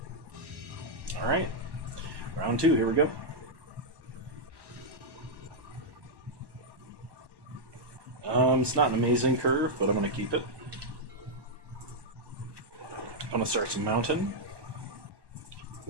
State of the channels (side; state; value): left; late; 1.1 ms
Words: Alright, round 2, here we go. It's not an amazing curve, but I'm going to keep it. I'm going to start some Mountain.